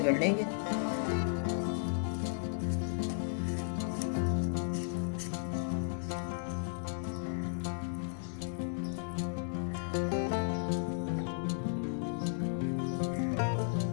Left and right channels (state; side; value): silent; right; digital silence